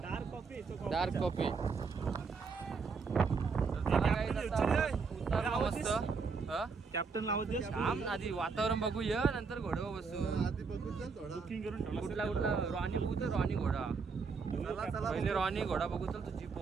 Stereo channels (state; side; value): quieter; left; 5.0 dB